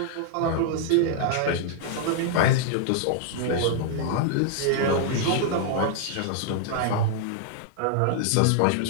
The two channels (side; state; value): both; different; correlation -0.01